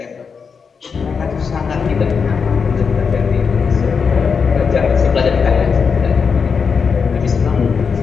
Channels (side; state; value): right; quieter; 5.8 dB